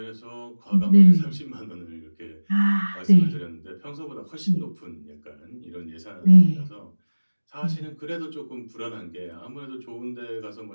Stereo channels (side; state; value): both; inverted; correlation -1.00